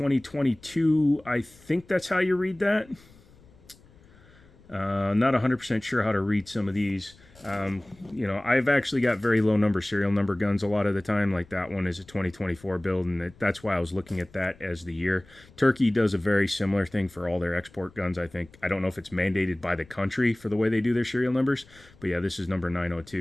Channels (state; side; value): noise; left; rumble, 26 dB below the sound